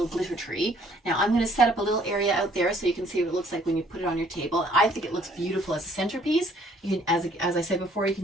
glitter tree. Now I'm going to set up a little area out there so you can see what it looks like when you put it on your table. I think it looks beautiful as a centerpiece. You can, as I said before, you can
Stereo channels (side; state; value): both; normal; correlation 0.61